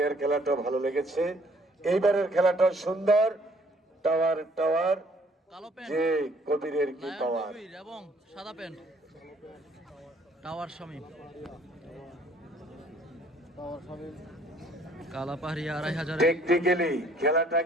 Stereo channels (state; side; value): normal; both; correlation 0.60